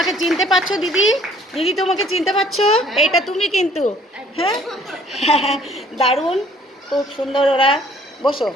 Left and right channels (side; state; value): both; normal; correlation 0.58